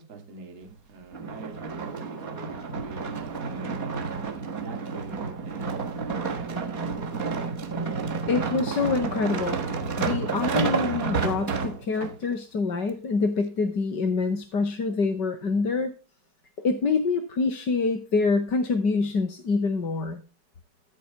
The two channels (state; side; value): late; right; 4.2 ms